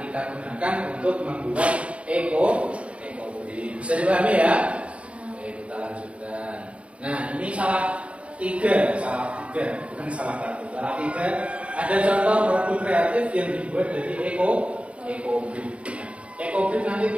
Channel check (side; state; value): left; late; 0.062 ms